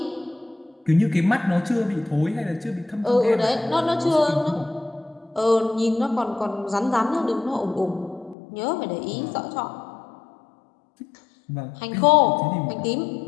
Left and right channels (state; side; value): drops out; right; at 8.3 s